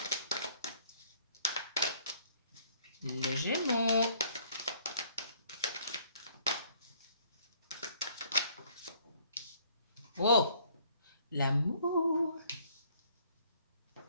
Les Gémeaux. Oh, l'amour.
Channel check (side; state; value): both; inverted; correlation -0.61